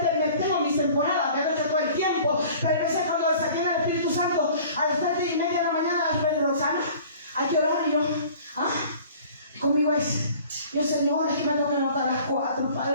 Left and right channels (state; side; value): inverted; both; correlation -0.48